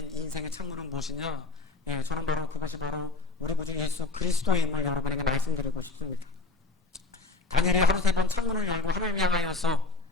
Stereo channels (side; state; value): right; quieter; 3.3 dB